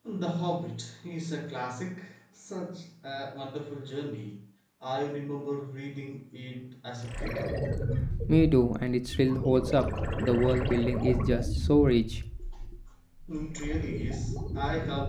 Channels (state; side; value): identical; both; correlation 1.00